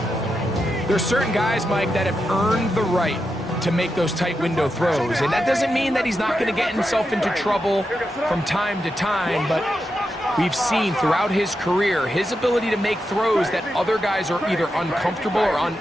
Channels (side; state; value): both; normal; correlation 0.87